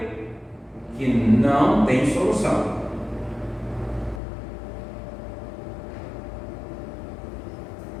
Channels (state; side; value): drops out; right; at 4.2 s